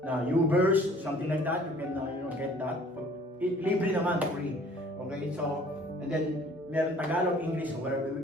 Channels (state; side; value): normal; both; correlation 0.53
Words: YouVerse, something like that, you can get that. Libre naman, free. Okay, so, and then meron Tagalog, English, whatever.